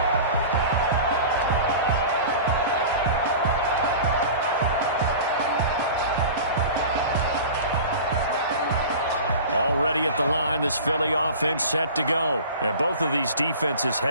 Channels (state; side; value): inverted; both; correlation -0.37